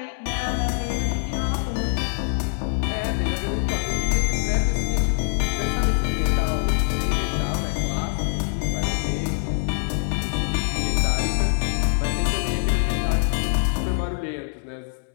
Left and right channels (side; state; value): right; silent; 62 dB below the other